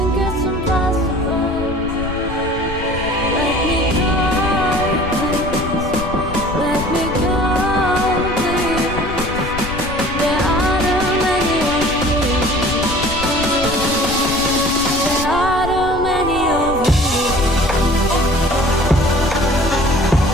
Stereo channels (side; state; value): left; noise; rumble, 9 dB below the sound